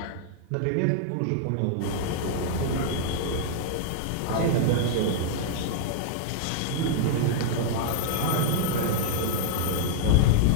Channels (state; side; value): different; both; correlation 0.00